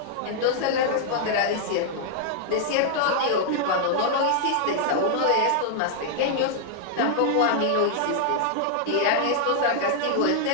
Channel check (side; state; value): both; different; correlation -0.01